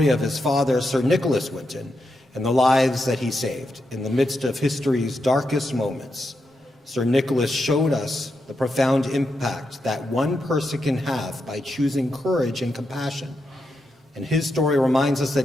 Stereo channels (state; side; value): normal; both; correlation 0.85